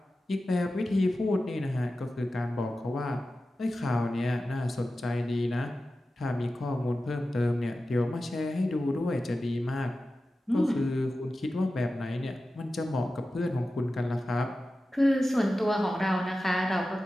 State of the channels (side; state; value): both; normal; correlation 0.94